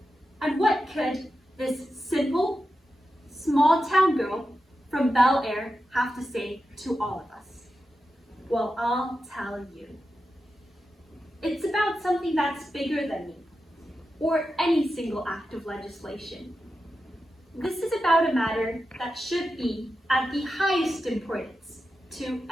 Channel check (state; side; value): normal; both; correlation 0.90